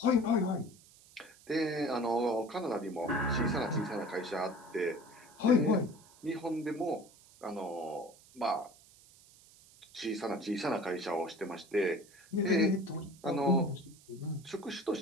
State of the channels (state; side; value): noise; right; hiss, 25 dB below the sound